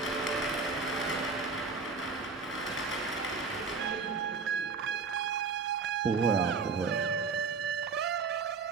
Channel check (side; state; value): left; quieter; 4.8 dB